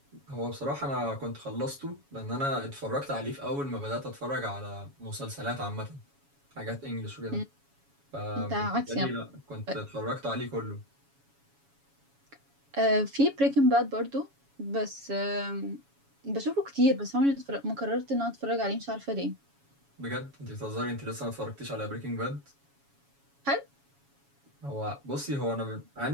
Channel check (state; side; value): late; left; 7.2 ms